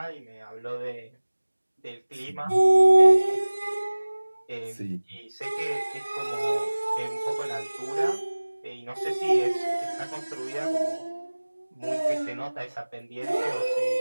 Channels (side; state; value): both; inverted; correlation -1.00